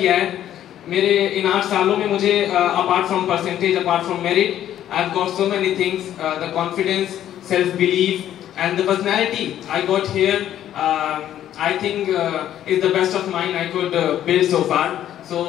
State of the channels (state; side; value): quieter; right; 11.4 dB